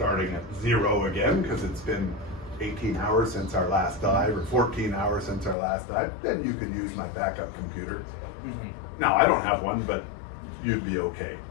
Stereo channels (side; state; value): right; drops out; at 5.6 s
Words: at 0 again, because it's been 18 hours since our last dive, or 14 hours since our last dive. Then you could use my backup computer. Mm-hmm. Now, I don't have one, but you'd be okay.